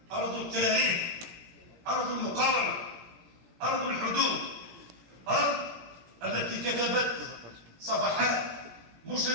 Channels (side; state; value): left; late; 18 ms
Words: أرض التاريخ، أرض المقاومة، أرض الحدود، أرض التي كتبت صفحات